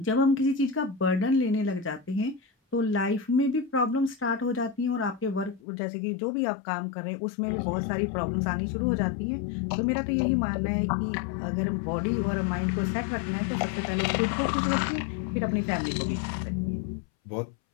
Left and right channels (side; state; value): right; drops out; at 5.6 s